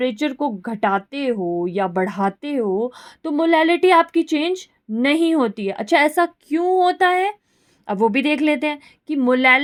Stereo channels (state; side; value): identical; both; correlation 1.00